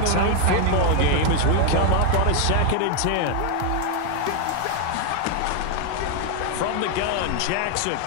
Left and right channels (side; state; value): both; different; correlation 0.01